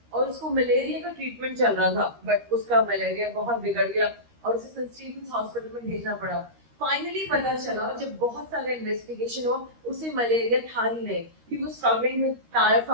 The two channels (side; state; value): left; late; 13 ms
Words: और उसको मलेरिया का ट्रीटमेंट चल रहा था, बट उसका मलेरिया बहुत बिगड़ गया और उसे सेंट स्टीफेंस हॉस्पिटल में भेजना पड़ा। फाइनली पता चला, जब बहुत सारे इन्वेस्टिगेशन हुआ, उसे मलेरिया था ही नहीं, he was struggling with